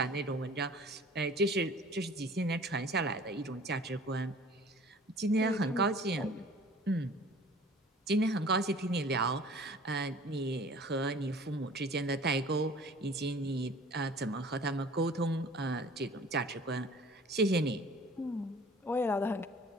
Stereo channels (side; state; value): both; normal; correlation 0.48